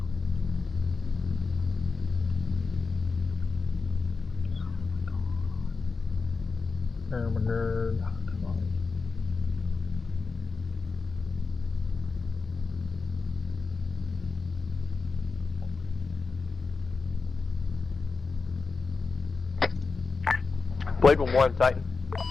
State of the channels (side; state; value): right; quieter; 4.4 dB